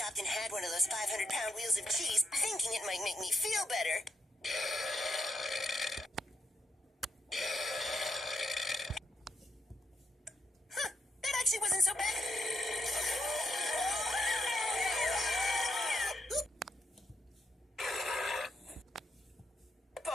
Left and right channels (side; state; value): both; normal; correlation 0.79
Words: and had one of those 500-pound wheels of cheese, thinking it might make me feel better. Huh, that actually wasn't so bad.